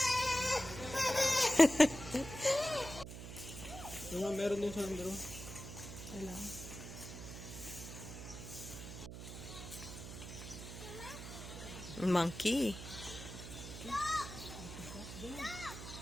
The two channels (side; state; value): right; noise; hum, 10 dB below the sound